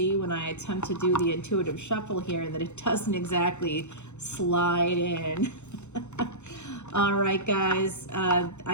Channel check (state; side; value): late; right; 0.83 ms